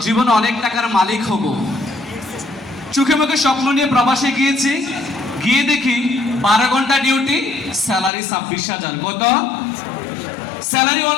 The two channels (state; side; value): drops out; right; at 8.1 s